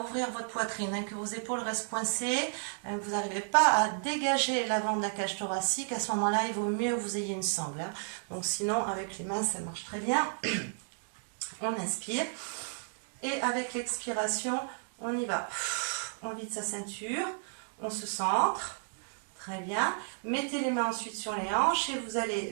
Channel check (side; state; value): left; silent; digital silence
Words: votre poitrine, hein, que vos épaules restent coincées, que vous n'arrivez pas à dégager l'avant de la cage thoracique. À ce moment-là, il vaut mieux que vous ayez une sangle. Hein. Donc sinon, avec les mains, ça marche très bien. On inspire. Et avec l'expiration, on y va. On vide sa ceinture, on se centre. Très bien. Mettez les mains ensuite sur les hanches et vous allez